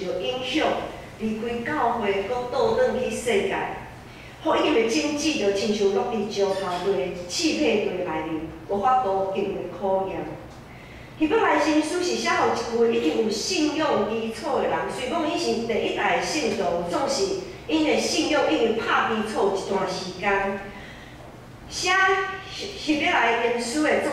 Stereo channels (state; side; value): identical; both; correlation 1.00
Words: 到影响，离开教会，搁倒转去世界。福音的经济就亲像落伫石头堆、气配堆内面，无法度经过考验。希伯来新书是写互一群已经有信仰基础的人，虽讲伊是第一代的信徒，总是因的信仰已经拍基础一段时间。写希伯来原书的作